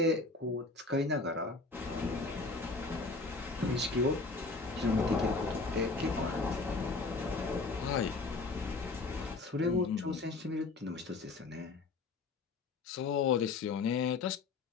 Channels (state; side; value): quieter; right; 3.8 dB